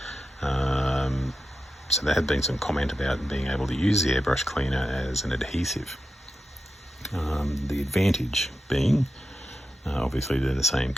So there had been some comment about being able to use the airbrush cleaner as an adhesive. The advantage being obviously they're the same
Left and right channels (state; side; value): normal; both; correlation 0.90